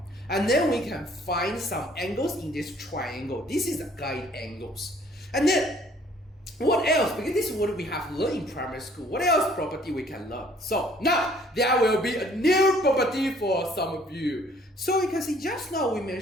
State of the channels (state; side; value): normal; both; correlation 0.59